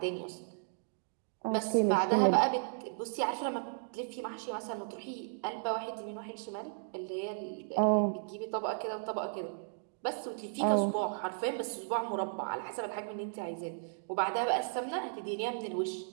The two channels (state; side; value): silent; left; digital silence